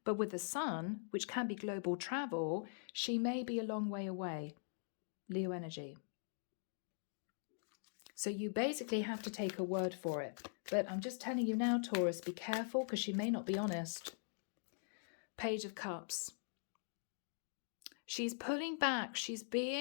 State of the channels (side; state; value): right; silent; digital silence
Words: but with the Sun, which can be global travel, she may be a long way away. Leo energy. So you basically have to take her word for it. But I'm just telling you now, Taurus, be careful because she may not be honest. Page of Cups. She's pulling back. She's